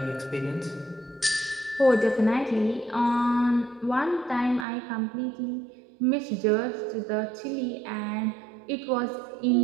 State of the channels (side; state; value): left; drops out; at 4.7 s